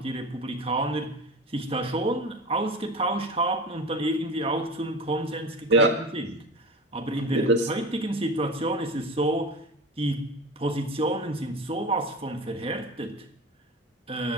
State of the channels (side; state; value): both; normal; correlation 0.30